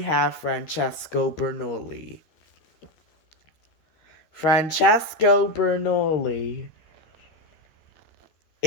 Francesco Bernoulli. Francesco Bernoulli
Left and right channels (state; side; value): late; right; 13 ms